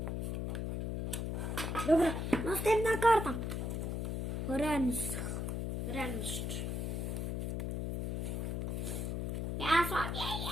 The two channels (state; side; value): noise; left; hum, 1 dB below the sound